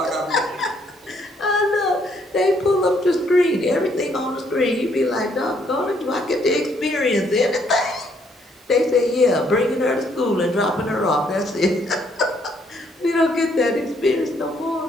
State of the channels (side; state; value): both; normal; correlation 0.69